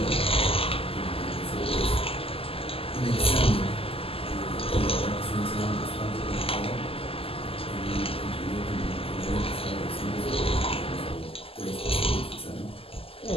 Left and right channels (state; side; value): late; right; 0.27 ms